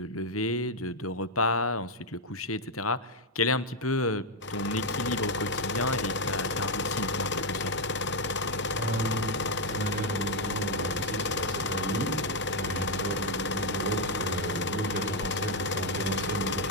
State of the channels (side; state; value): both; normal; correlation 0.01